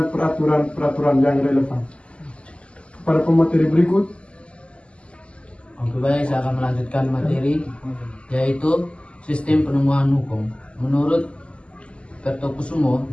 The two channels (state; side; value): late; right; 0.056 ms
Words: peraturan-peraturan yang relevan. Pada pemateri berikut. Oke, baik, saya akan melanjutkan materi yaitu sistem penemuan hukum. Menurut Mertokusumo